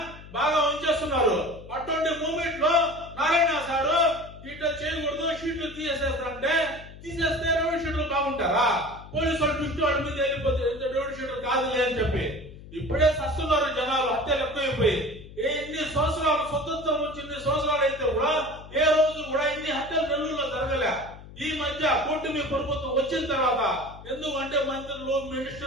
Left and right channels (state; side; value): noise; left; hum, 17 dB below the sound